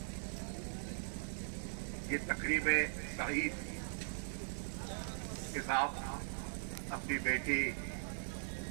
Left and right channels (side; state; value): left; silent; digital silence